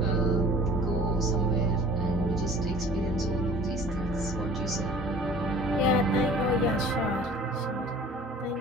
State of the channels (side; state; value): both; normal; correlation 0.48